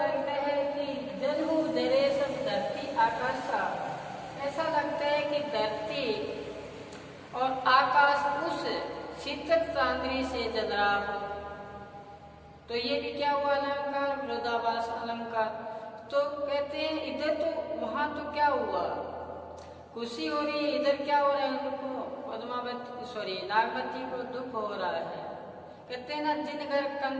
है कि जन्म जरेश धरती आकाश, ऐसा लगता है कि धरती और आकाश उस शीतल चांदनी से जल रहा हो। तो ये भी क्या हुआ अलंकार, विरोधाभास अलंकार। तो कहते हैं इधर तो वहां तो क्या हुआ, खुशी हो रही है, इधर क्या हो रहा है, उनको पद्मावती नागवती को दुख हो रहा है। कहते हैं ना, जिन घर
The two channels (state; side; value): identical; both; correlation 1.00